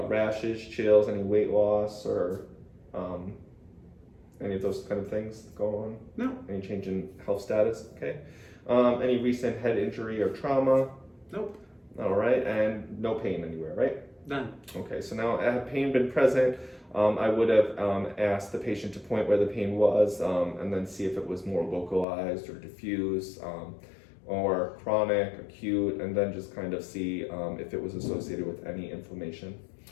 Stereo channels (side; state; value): right; drops out; at 22.1 s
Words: chills, any weight loss, or any of those kind of things going on? No. Any change in health status? Okay. Any recent head injury or trauma? Nope. All right, and no pain anywhere, right? None. Okay, so now had pain been present, I would have asked the patient to point where the pain was and then see if it was more localized or diffuse or chronic, acute, and then just kind of see if it was associated with any inflammation.